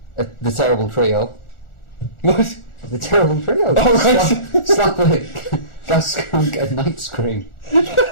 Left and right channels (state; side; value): late; right; 1.4 ms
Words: terrible trio. What? The terrible trio. Oh, right. Slapwick, Gasskunk and Night Scream.